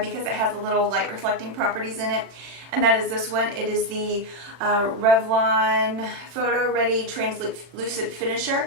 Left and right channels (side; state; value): left; late; 40 ms